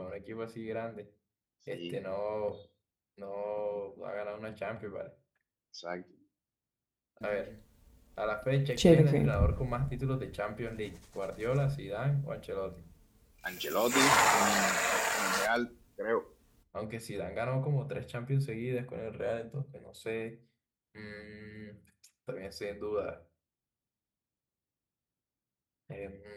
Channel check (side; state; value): both; identical; correlation 1.00